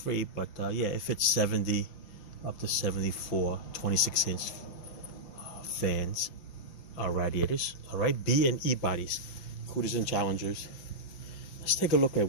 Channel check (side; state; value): right; late; 5.9 ms